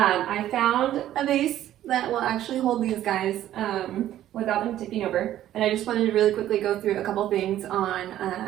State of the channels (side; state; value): left; quieter; 12.6 dB